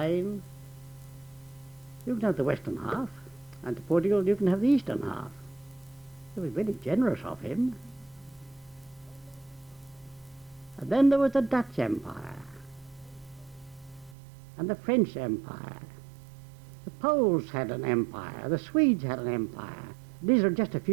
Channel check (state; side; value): drops out; left; at 14.2 s